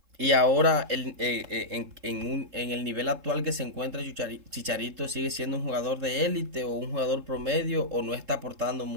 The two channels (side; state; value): left; late; 3.7 ms